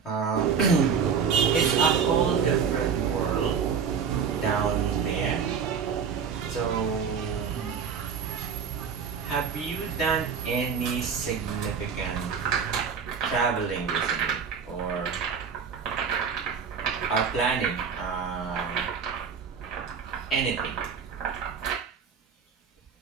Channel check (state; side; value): quieter; left; 6.5 dB